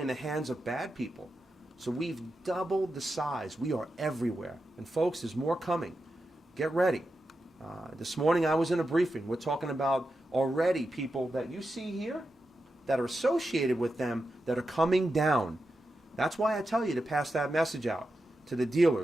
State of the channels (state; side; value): normal; both; correlation 0.89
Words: the hands of bad people. So we've doubled the size. We are everywhere. And folks, there's more coming. Get ready. This morning I was in a briefing. We're talking about already people that you see here that are associated with them that are coming down. That's why I tell you to pass that message out to the